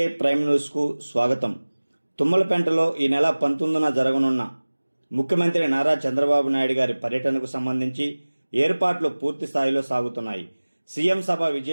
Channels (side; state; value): both; inverted; correlation -1.00